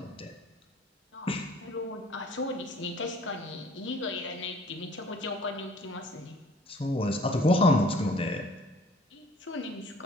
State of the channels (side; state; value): both; normal; correlation 0.54